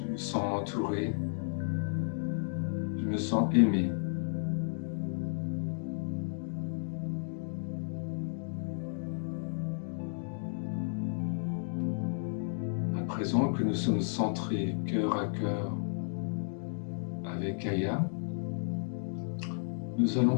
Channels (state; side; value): silent; right; digital silence